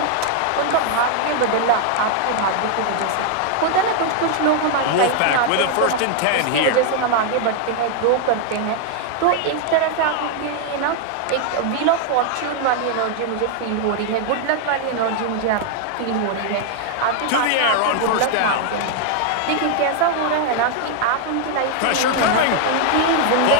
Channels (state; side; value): different; both; correlation 0.00